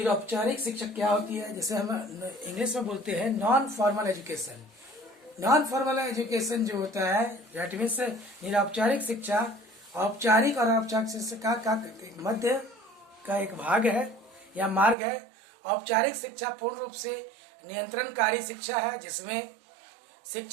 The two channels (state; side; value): drops out; left; at 15.0 s